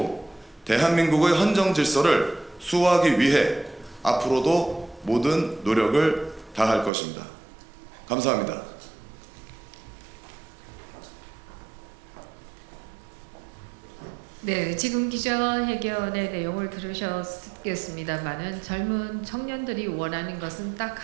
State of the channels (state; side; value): drops out; left; at 6.9 s